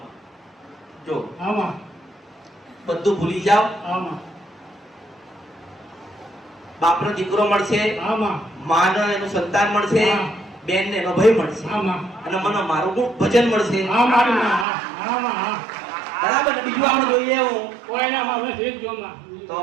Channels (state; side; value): drops out; left; at 14.7 s